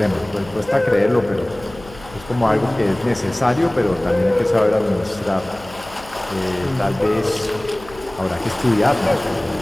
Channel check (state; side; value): noise; left; hum, 20 dB below the sound